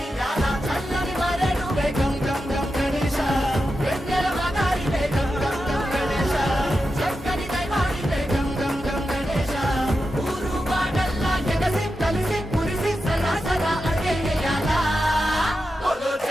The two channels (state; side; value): normal; both; correlation 0.90